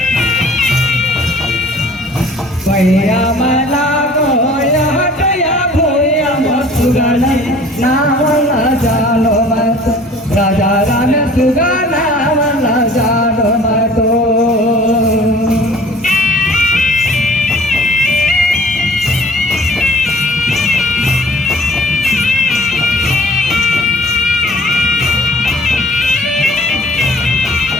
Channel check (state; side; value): normal; both; correlation 0.50